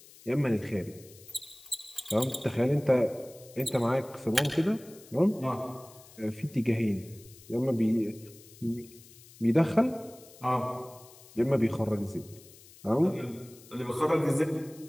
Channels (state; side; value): noise; left; hiss, 22 dB below the sound